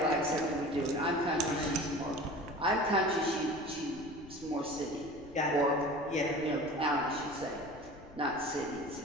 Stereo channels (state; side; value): noise; left; rumble, 19 dB below the sound